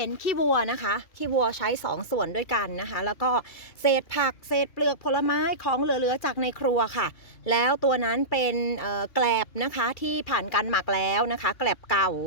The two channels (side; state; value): right; late; 2.3 ms